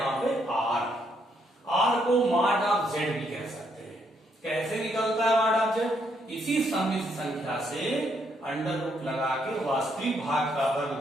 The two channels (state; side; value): normal; both; correlation 0.74